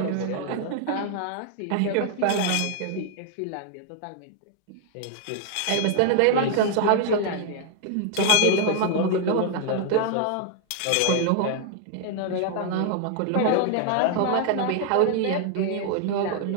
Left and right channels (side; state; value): both; different; correlation 0.00